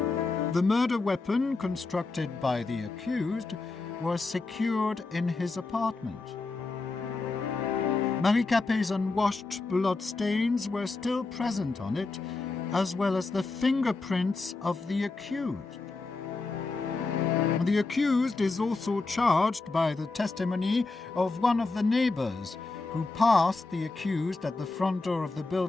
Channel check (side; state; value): right; quieter; 3.6 dB